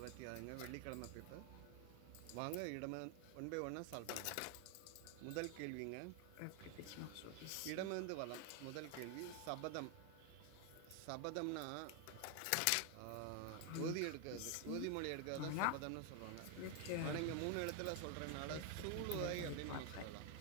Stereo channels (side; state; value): both; different; correlation 0.00